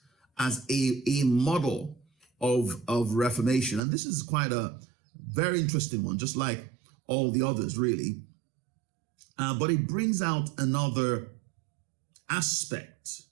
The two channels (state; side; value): drops out; left; at 3.8 s